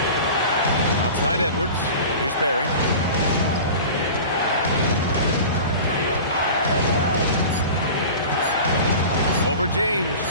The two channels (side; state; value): both; inverted; correlation -0.36